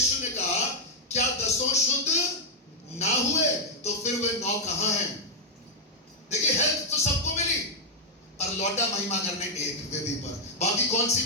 ने कहा, क्या 10 शुद्ध ना हुए तो फिर वे 9 कहां हैं? देखिए, हेल्थ तो सबको मिली, पर लौटा महिमा करने एक वेदी पर। बाकी कौन सी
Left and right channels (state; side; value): normal; both; correlation -0.04